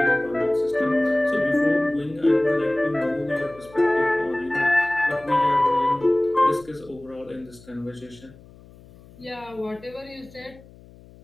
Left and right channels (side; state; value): left; noise; hum, 23 dB below the sound